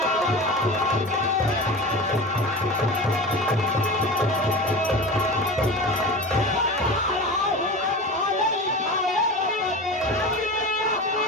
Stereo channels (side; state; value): both; normal; correlation 0.30